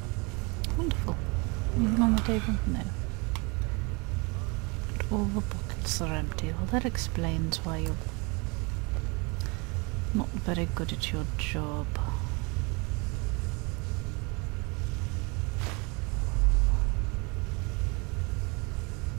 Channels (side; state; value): left; quieter; 29.4 dB